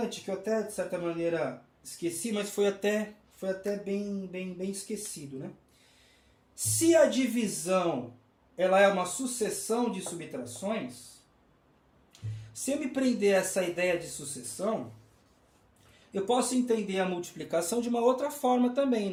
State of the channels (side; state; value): both; identical; correlation 1.00